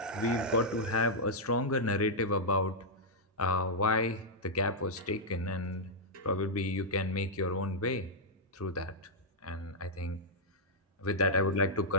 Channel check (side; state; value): both; normal; correlation -0.06